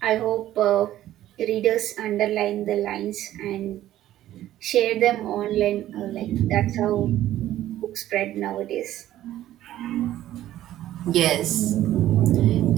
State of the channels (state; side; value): quieter; left; 13.4 dB